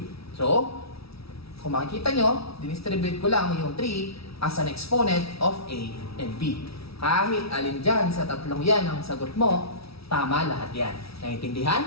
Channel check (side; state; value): right; late; 0.76 ms